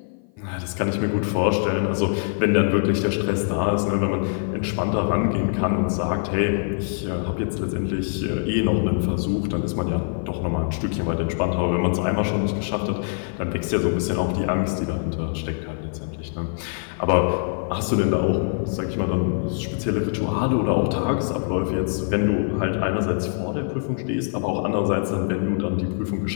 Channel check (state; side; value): silent; right; 55 dB below the other